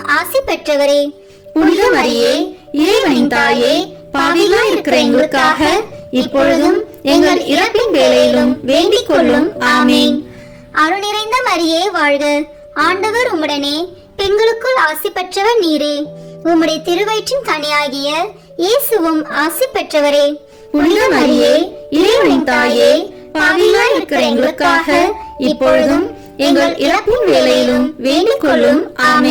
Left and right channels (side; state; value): both; identical; correlation 1.00